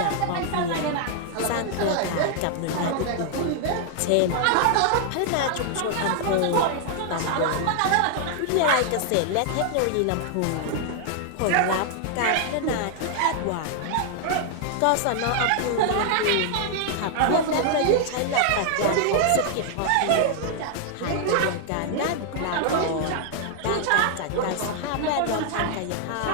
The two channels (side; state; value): both; different; correlation 0.00